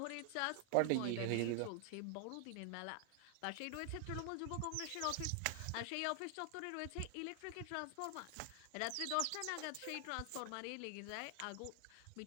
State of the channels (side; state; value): both; different; correlation 0.00